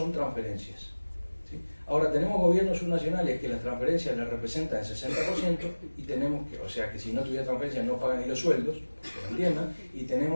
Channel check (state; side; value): inverted; both; correlation -1.00